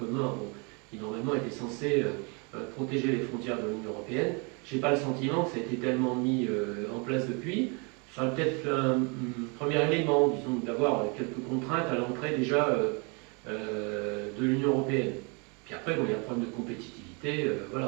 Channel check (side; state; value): left; quieter; 32.9 dB